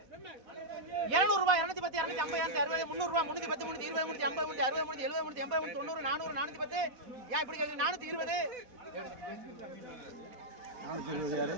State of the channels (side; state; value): left; late; 4.1 ms